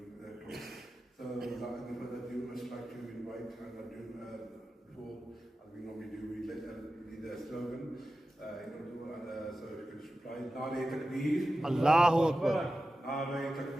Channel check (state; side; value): normal; both; correlation 0.93